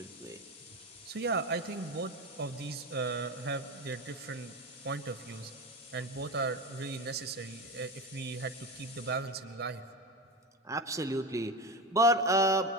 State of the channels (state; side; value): normal; both; correlation 0.22